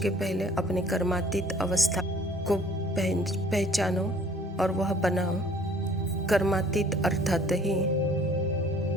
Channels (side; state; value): both; normal; correlation 0.54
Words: पहले अपने कर्मातीत अवस्था को पहचानो और वह बनाओ। कर्मातीत अर्थात ही